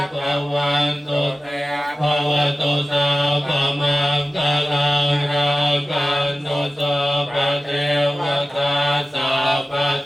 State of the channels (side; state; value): both; normal; correlation 0.95